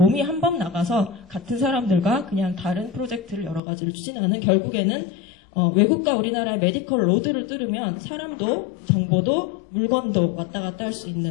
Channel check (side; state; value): right; drops out; at 3.6 s